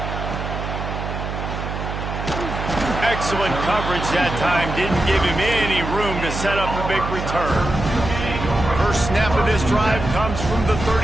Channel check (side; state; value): right; noise; hum, 5 dB below the sound